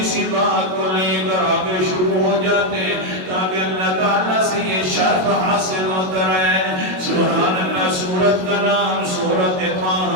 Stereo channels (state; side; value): late; left; 22 ms